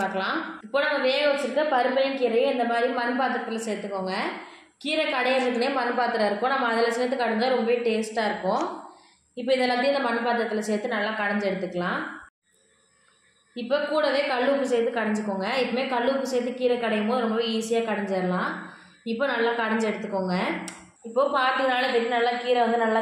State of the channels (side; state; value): both; identical; correlation 1.00